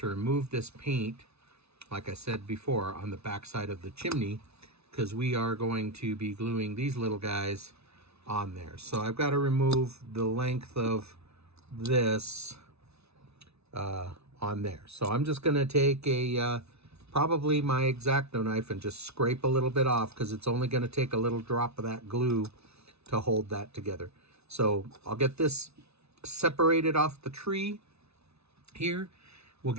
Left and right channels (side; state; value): left; late; 0.80 ms